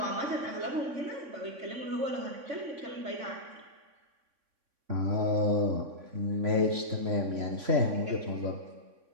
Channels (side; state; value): left; late; 3.6 ms